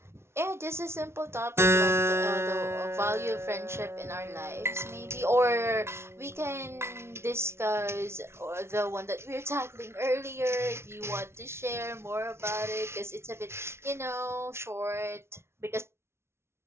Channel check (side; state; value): left; late; 0.12 ms